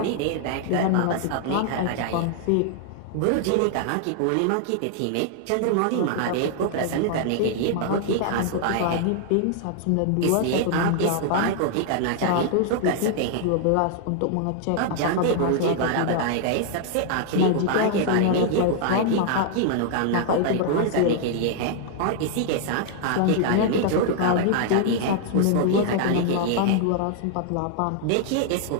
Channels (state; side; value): different; both; correlation 0.00